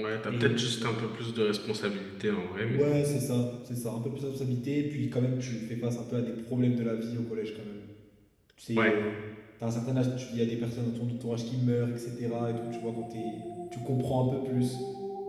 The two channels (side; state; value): both; identical; correlation 1.00